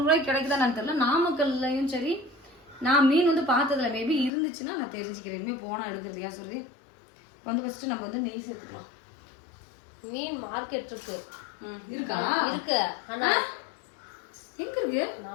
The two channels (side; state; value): right; drops out; at 4.3 s